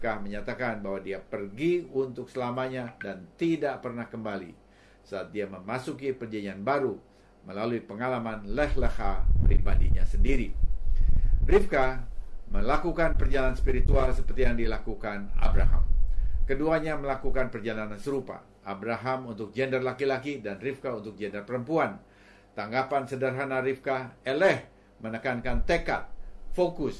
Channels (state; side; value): identical; both; correlation 1.00